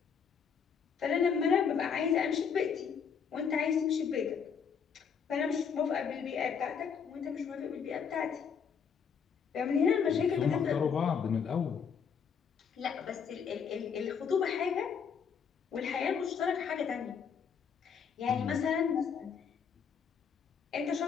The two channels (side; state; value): right; quieter; 6.7 dB